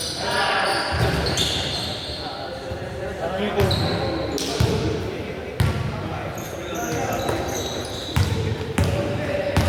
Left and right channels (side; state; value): both; identical; correlation 1.00